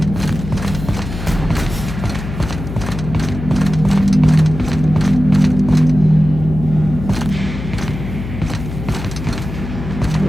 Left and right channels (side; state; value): left; noise; hum, 8 dB below the sound